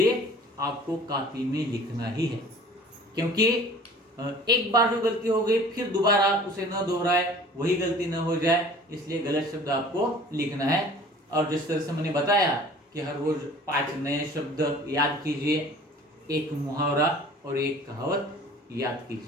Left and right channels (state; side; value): normal; both; correlation 0.47